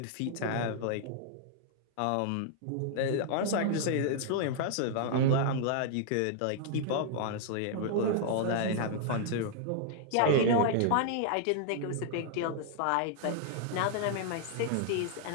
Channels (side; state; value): both; different; correlation -0.01